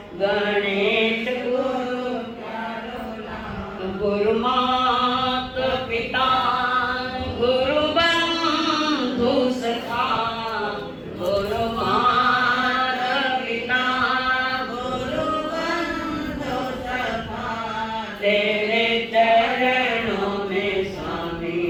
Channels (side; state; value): both; identical; correlation 1.00